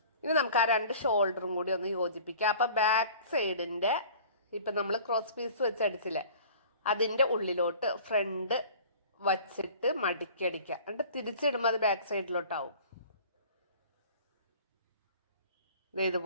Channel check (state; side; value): inverted; both; correlation -0.45